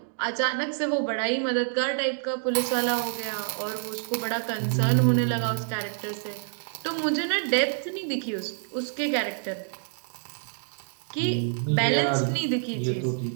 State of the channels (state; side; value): silent; left; digital silence